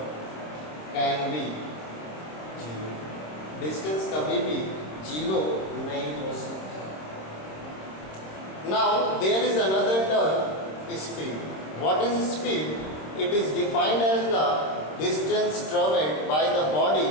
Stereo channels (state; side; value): late; right; 26 ms